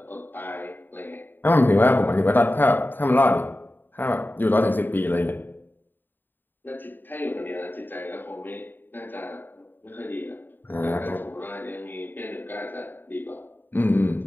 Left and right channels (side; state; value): right; late; 0.093 ms